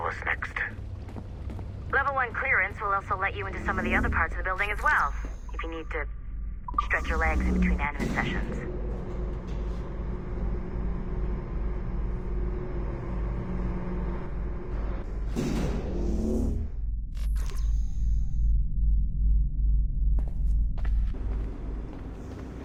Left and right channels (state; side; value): identical; both; correlation 1.00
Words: us next. Level 1 clearance will also let you into some of the other parts of the building as well, if you need to stretch your legs in between Animus sessions.